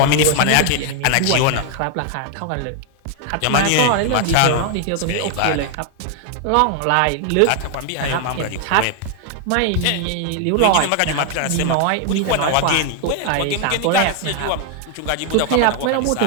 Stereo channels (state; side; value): different; both; correlation 0.00